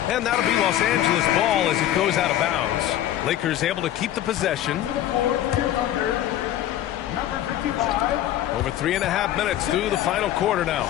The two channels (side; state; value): right; quieter; 12.6 dB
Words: And that'll be Los Angeles ball as it goes out of bounds. Lakers able to keep the possession. Over 3.5 minutes through the final quarter now.